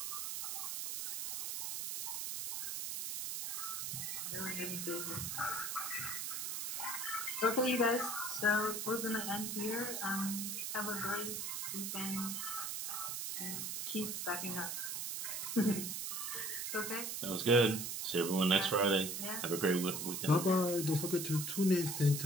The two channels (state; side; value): noise; right; hiss, 3 dB below the sound